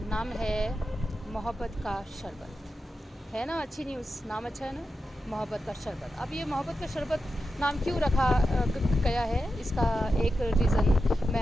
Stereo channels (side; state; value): both; normal; correlation 0.90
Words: नाम है मोहब्बत का शरबत। है ना अच्छी न्यूज़, नाम अच्छा है ना, मोहब्बत का शरबत। अब ये मोहब्बत का शरबत नाम क्यों रखा गया है, इसका एक रीज़न